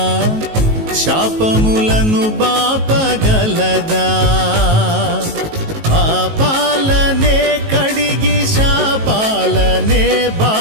శాపములను బాపగలదా పాపాలనే కడిగి శాపాలనే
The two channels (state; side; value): late; left; 19 ms